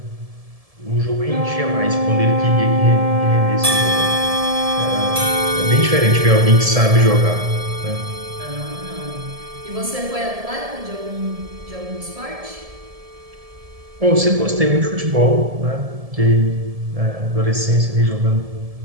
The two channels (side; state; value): left; late; 1.7 ms